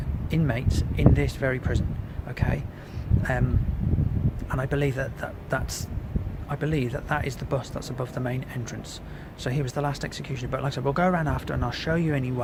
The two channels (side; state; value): both; identical; correlation 1.00